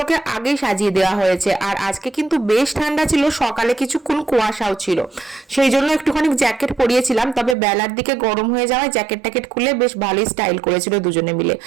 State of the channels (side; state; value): left; drops out; at 7.6 s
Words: আগেই সাজিয়ে দেওয়া হয়েছে। আর আজকে কিন্তু বেশ ঠান্ডা ছিল, সকালে কিছুক্ষণ কুয়াশাও ছিল, সেই জন্য একটুখানি জ্যাকেট পরিয়েছিলাম। তবে বেলার দিকে গরম হয়ে যাওয়ায় জ্যাকেট ট্যাকেট খুলে বেশ ভালোই স্টাইল করেছিল দুজনে মিলে।